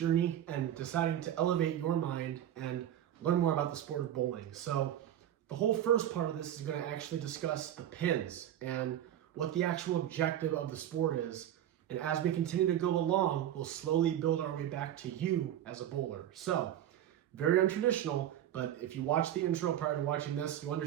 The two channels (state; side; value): quieter; left; 11.3 dB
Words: and deciding to elevate your mind and learn more about the sport of bowling. So the whole first part of this is going to actually discuss the pins and what the actual objective of the sport is. And as we continue to go along, we'll slowly build our way back to you as a bowler. So, very untraditional, but if you watch the intro prior to watching this, you'll